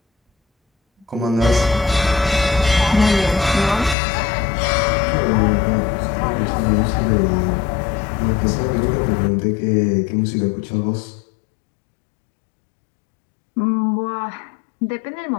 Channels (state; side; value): drops out; right; at 4.0 s